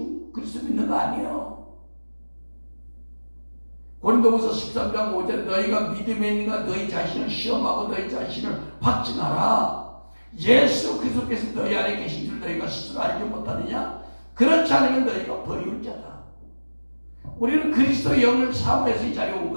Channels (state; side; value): inverted; both; correlation -1.00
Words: 그리스도 믿는 거 아니에요. 고린도후서 13장 5절에 너희가 믿음에 있는가 너희 자신을 시험하고 너희 자신을 확증하라. 예수 그리스도께서 너희 안에 계신 줄 너희가 스스로 알지 못하느냐? 그렇지 않으면 너희가 버리울 자다. 우리는 그리스도의 영을 사모해서 이 자리에 온